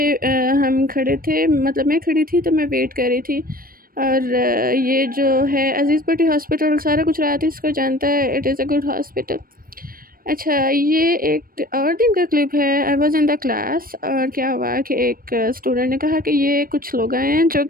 हम खड़े थे, मतलब मैं खड़ी थी तो मैं वेट कर रही थी। और ये जो है अज़ीज़ बेटी हॉस्पिटल, सारा गुजरात इसको जानता है, it is a good hospital. अच्छा, ये एक और दिन का क्लिप है। I was in the class, और क्या हुआ कि एक स्टूडेंट ने कहा कि ये कुछ लोग आए हैं जो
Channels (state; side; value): late; left; 0.42 ms